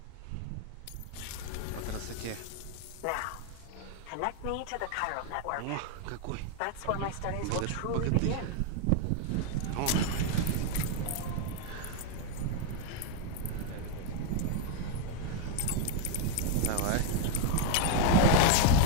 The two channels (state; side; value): different; both; correlation 0.01